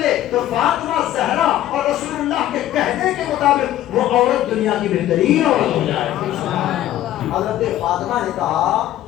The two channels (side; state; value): right; quieter; 13.2 dB